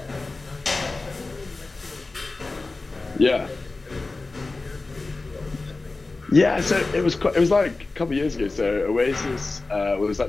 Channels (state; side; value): quieter; right; 3.4 dB